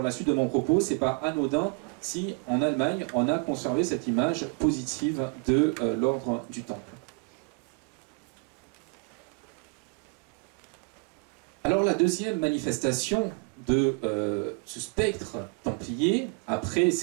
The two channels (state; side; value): quieter; left; 32.7 dB